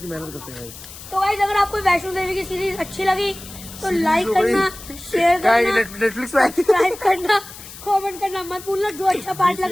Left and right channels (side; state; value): left; noise; hiss, 15 dB below the sound